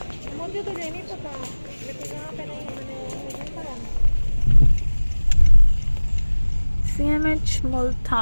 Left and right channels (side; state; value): both; inverted; correlation -1.00